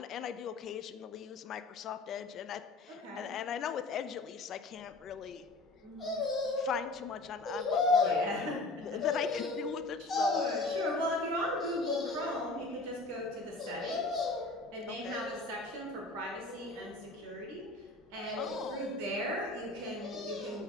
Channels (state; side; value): quieter; right; 3.0 dB